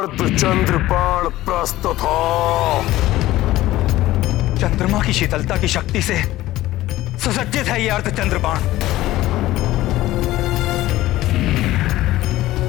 बाण प्रस्तुत हो। चंद्रमा की शीतलता की शक्ति से सुसज्जित है यह अर्धचंद्र बाण।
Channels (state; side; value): quieter; right; 16.0 dB